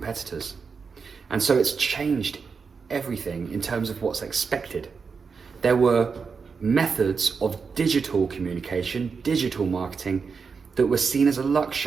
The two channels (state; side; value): quieter; left; 5.4 dB